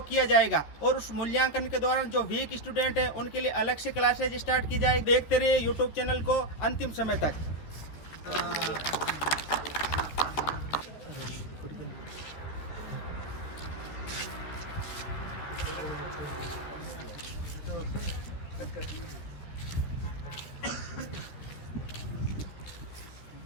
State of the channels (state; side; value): late; right; 14 ms